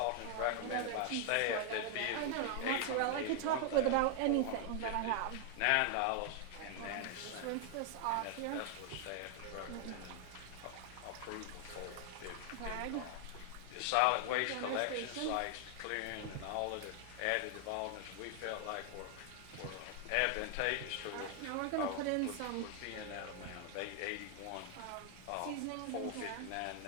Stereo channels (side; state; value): both; different; correlation 0.00